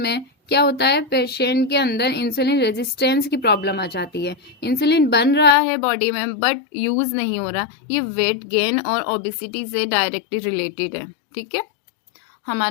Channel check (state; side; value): drops out; right; at 5.6 s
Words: क्या होता है, पेशेंट के अंदर इंसुलिन रेजिस्टेंस की प्रॉब्लम आ जाती है। इंसुलिन बन रहा है बॉडी में बट यूज नहीं हो रहा। ये वेट गेन और ओबेसिटी से डायरेक्टली रिलेटेड है। ठीक है,